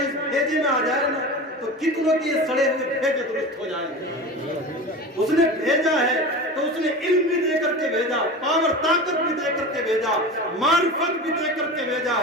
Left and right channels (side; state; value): both; normal; correlation 0.30